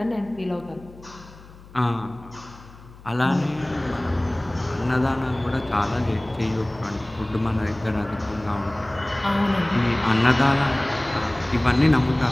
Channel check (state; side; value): noise; left; hum, 21 dB below the sound